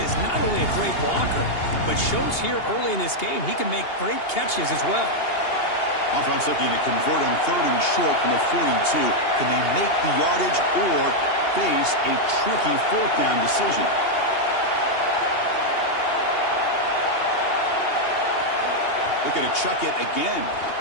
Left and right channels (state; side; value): late; right; 2.8 ms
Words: is not only a great blocker, but shows here early in this game he can make great catches as well. Offense looking to convert on third and short from the 42. Can they make the yardage or face a tricky fourth down decision? Looking to chuck it again.